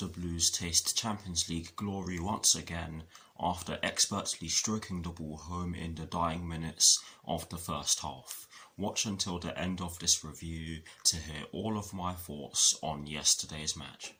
Blues taste Champions League glory once again after expertly stroking the ball home in the dying minutes of the first half. Watch until the end of this review to hear all of my thoughts on yesterday's match.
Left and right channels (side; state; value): both; identical; correlation 1.00